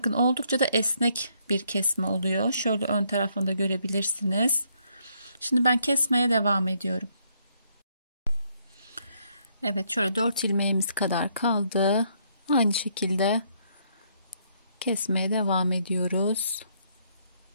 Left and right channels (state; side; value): inverted; both; correlation -0.71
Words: oldukça da esnek bir kesme oluyor. Şöyle ön tarafını da görebilirsiniz. Şimdi ben kesmeye devam ediyorum. Evet, şöyle 4 ilmeğimiz kadar kaldı. Aynı şekilde kesmeye devam ediyoruz.